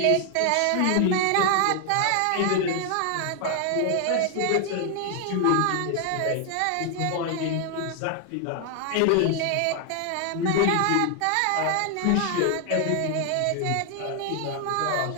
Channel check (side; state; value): both; different; correlation 0.00